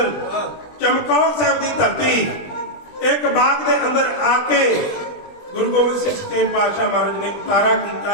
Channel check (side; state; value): right; late; 20 ms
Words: ਚਮਕੌਰ ਸਾਹਿਬ ਦੀ ਧਰਤੀ। ਇੱਕ ਬਾਗ ਦੇ ਅੰਦਰ ਆ ਕੇ ਗੁਰੂ ਗੋਬਿੰਦ ਸਿੰਘ ਸੱਚੇ ਪਾਤਸ਼ਾਹ ਮਹਾਰਾਜ ਨੇ ਉਤਾਰਾ